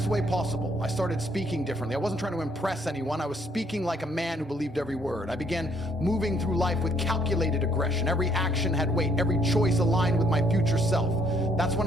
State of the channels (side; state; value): both; normal; correlation 0.68